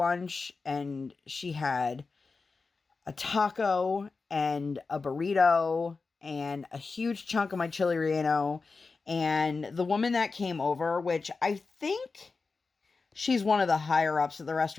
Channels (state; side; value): quieter; right; 4.3 dB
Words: and she had a taco and a burrito and a huge chunk of my chili relleno. And the woman that came over, which I think she's one of the higher ups at the